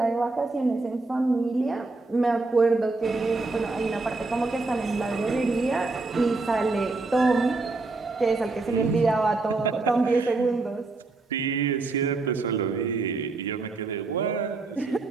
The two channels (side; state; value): left; quieter; 3.5 dB